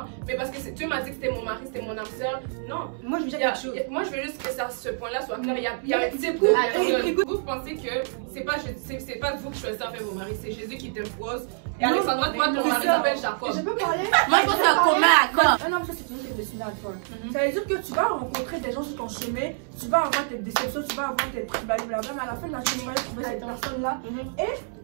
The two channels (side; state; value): left; silent; digital silence